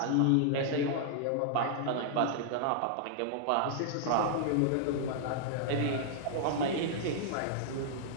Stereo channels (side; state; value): both; different; correlation -0.01